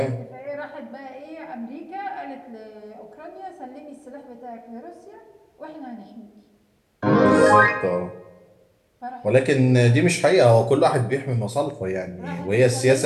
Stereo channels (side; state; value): both; identical; correlation 1.00